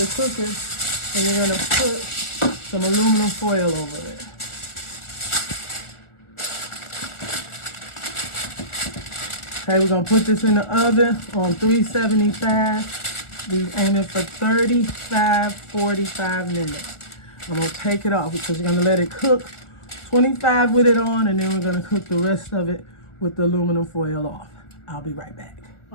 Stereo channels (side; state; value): right; late; 1.4 ms